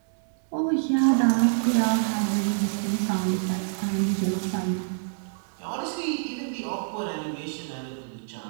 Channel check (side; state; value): left; silent; 61 dB below the other